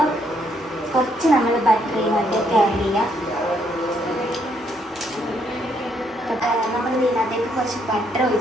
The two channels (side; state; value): both; normal; correlation 0.72